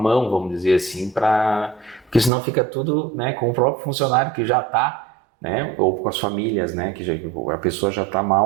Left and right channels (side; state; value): left; drops out; at 2.3 s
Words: vamos dizer assim, porque senão fica tudo, né, com o próprio funcionário que já está, né, ou com as famílias, né, a pessoa já está